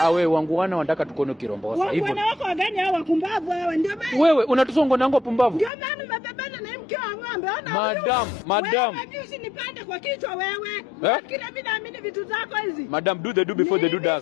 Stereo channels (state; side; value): drops out; right; at 5.7 s